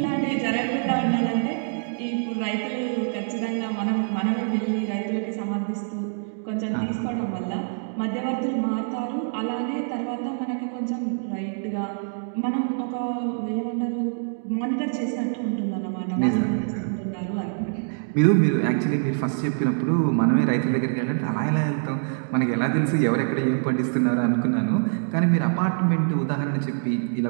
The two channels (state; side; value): silent; left; digital silence